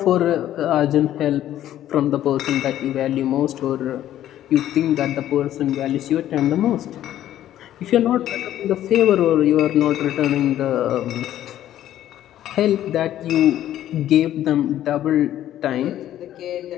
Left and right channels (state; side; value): quieter; right; 12.3 dB